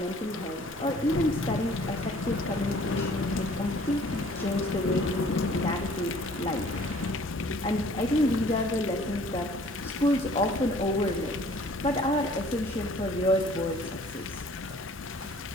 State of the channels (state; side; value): normal; both; correlation 0.54